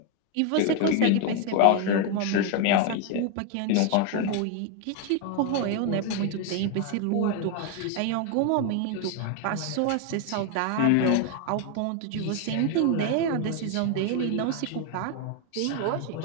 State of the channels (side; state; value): both; different; correlation 0.01